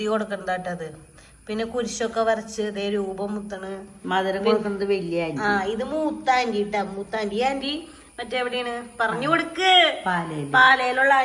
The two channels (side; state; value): both; identical; correlation 1.00